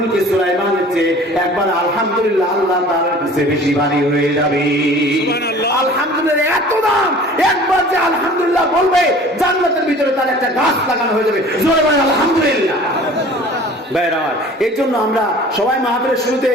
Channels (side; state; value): both; normal; correlation 0.46